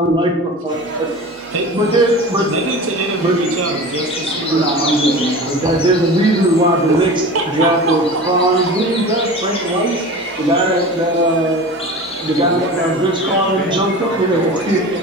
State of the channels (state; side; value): normal; both; correlation 0.34